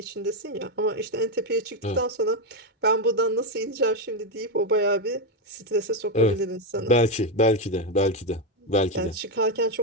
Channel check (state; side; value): normal; both; correlation 0.07